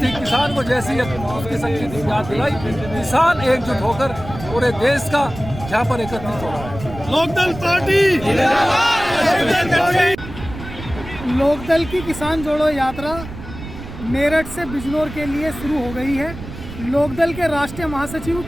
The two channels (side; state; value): right; noise; rumble, 12 dB below the sound